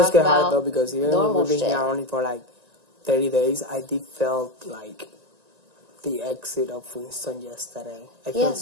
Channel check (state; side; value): late; left; 1.9 ms